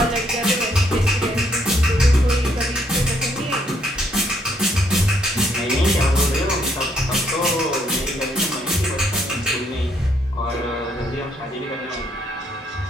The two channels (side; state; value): both; normal; correlation 0.71